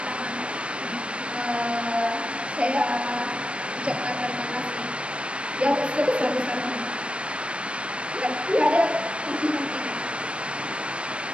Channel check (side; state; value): left; late; 0.059 ms